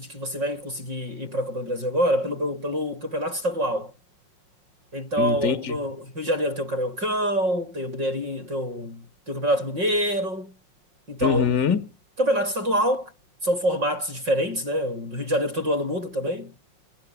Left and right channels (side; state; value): left; late; 5.5 ms